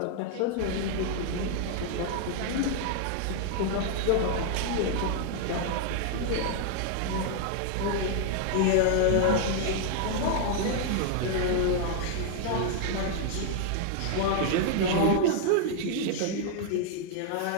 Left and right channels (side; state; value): both; different; correlation 0.00